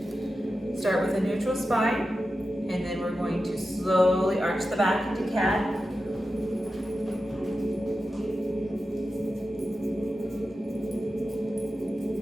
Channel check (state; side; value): normal; both; correlation 0.92